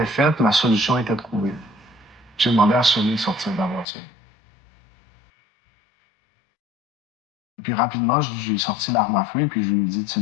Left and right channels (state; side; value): drops out; right; at 3.9 s